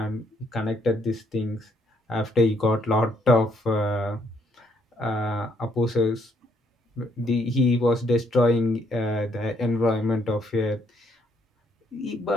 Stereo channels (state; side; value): normal; both; correlation 0.70